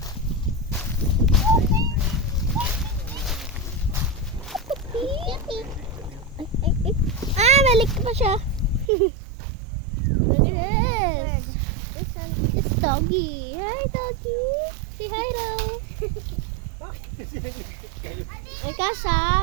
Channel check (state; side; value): drops out; left; at 8.8 s